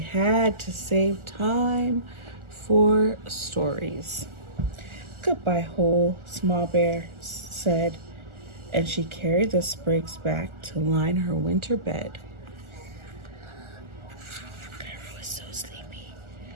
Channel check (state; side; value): late; left; 1.4 ms